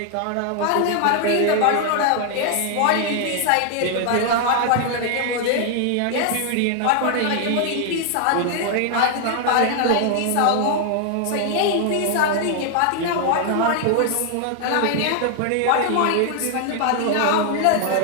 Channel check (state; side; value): different; both; correlation 0.00